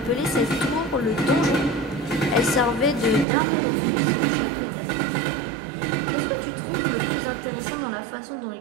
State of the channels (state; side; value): drops out; left; at 3.2 s